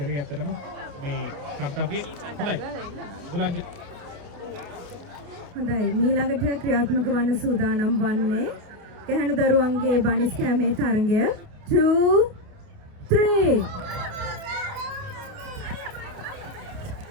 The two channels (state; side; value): late; left; 29 ms